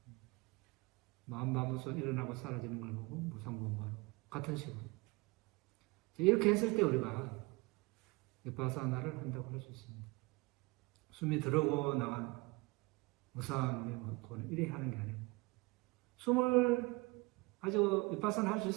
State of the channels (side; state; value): left; quieter; 25.4 dB